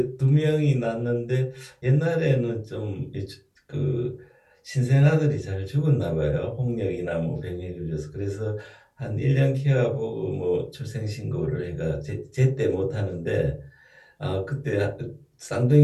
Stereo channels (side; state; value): both; identical; correlation 1.00